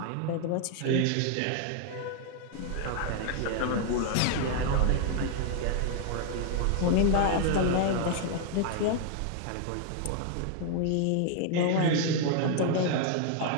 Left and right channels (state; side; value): different; both; correlation 0.00